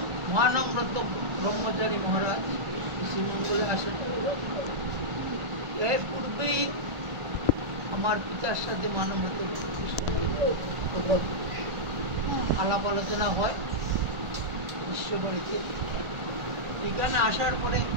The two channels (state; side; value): late; left; 1.5 ms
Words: মহানম্রত ব্রহ্মচারী মহারাজ শ্রীমঙ্গলে আসেন, এর পূর্বেই আমার পিতার সাথে মানবত আলাপ আলোচনা হয় বিশ্ববাড়িতে। এখানে আসার পরে